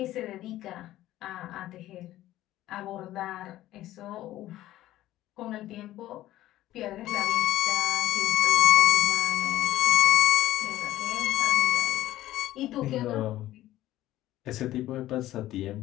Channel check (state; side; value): quieter; right; 14.7 dB